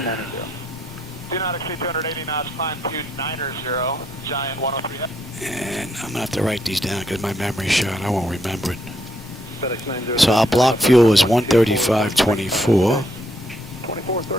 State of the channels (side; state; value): both; normal; correlation 0.74